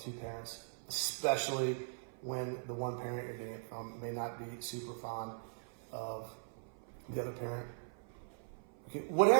parents, especially when the one parent you're getting it from may not be super fond of the other parent. Okay,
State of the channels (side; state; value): left; silent; 51 dB below the other